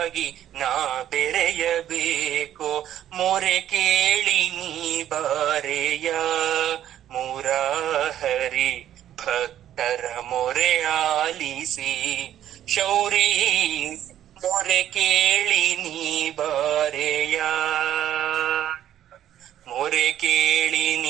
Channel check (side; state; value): left; quieter; 11.4 dB